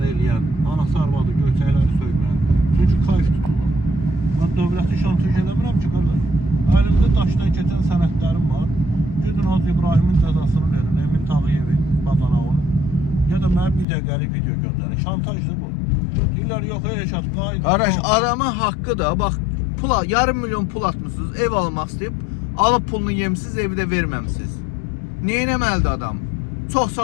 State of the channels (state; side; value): drops out; right; at 13.9 s